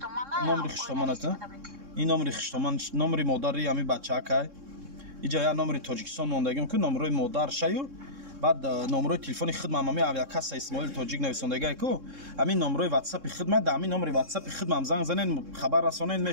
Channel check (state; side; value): late; left; 3.7 ms